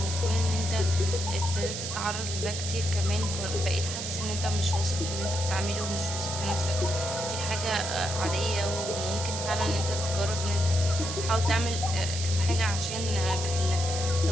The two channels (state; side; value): noise; right; hiss, 5 dB below the sound